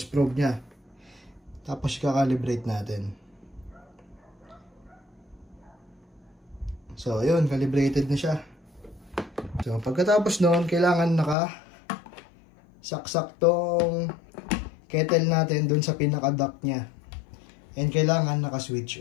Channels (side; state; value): right; drops out; at 11.4 s